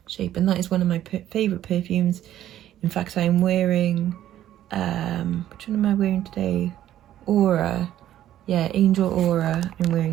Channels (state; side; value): quieter; left; 12.3 dB